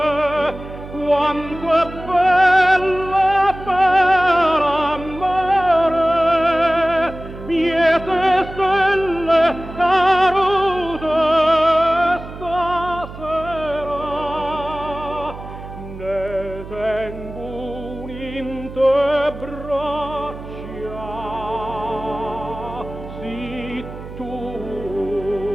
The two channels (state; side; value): noise; right; hum, 13 dB below the sound